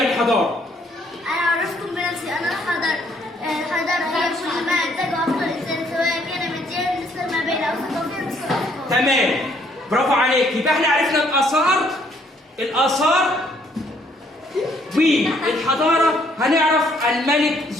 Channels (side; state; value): both; normal; correlation 0.66